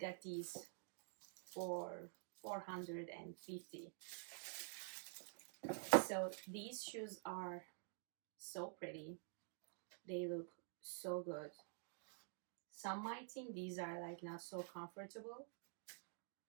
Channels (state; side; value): silent; left; digital silence